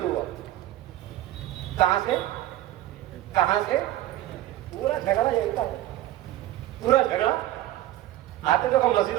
ہوا۔ کہاں سے کہاں سے؟ پورا جھگڑا یہی تھا، پورا جھگڑا۔ آتے تو ہم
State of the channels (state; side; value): quieter; left; 14.5 dB